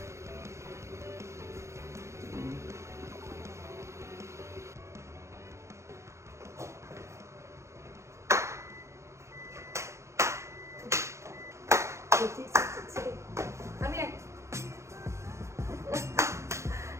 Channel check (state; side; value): late; left; 0.14 ms